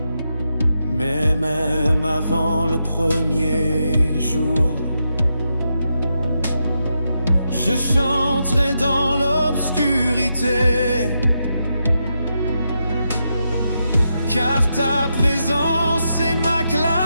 mais même avant le premier jour, je chanterai dans l'obscurité, car ta présence est ma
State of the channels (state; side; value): inverted; both; correlation -0.85